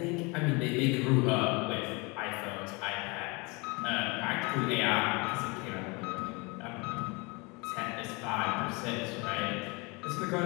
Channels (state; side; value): quieter; right; 28.0 dB